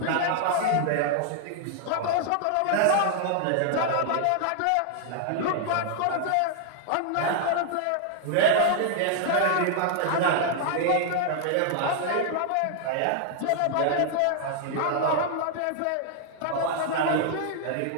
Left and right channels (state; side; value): different; both; correlation 0.00